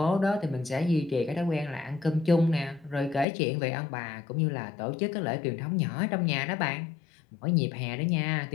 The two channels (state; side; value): drops out; right; at 3.2 s